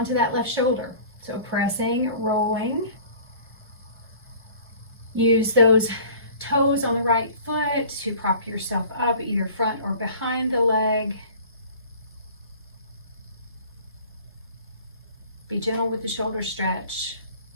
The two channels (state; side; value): inverted; both; correlation -0.46